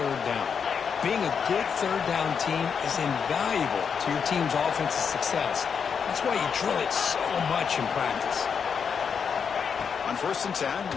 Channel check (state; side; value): quieter; right; 6.6 dB